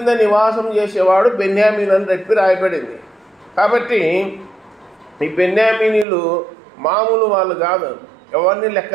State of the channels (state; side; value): drops out; left; at 6.1 s